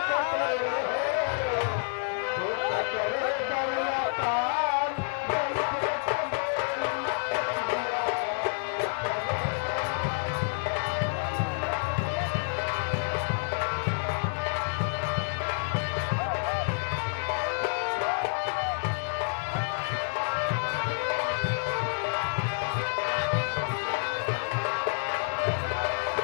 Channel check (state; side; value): silent; right; 59 dB below the other